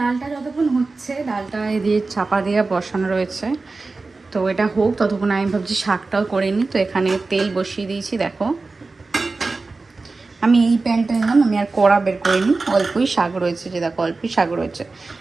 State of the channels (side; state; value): left; quieter; 3.7 dB